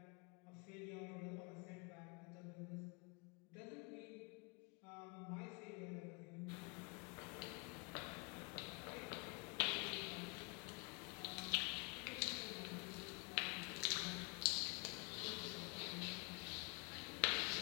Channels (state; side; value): quieter; right; 32.4 dB